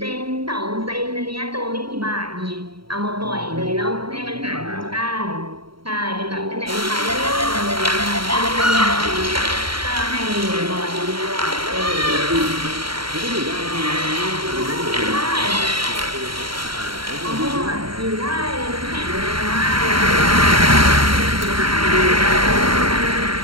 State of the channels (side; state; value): left; late; 0.74 ms